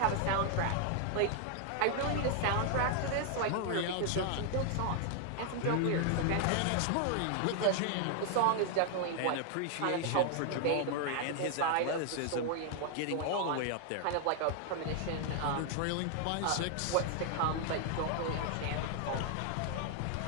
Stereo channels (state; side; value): different; both; correlation 0.00